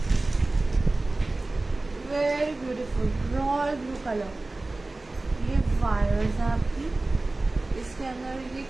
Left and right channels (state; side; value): quieter; left; 3.0 dB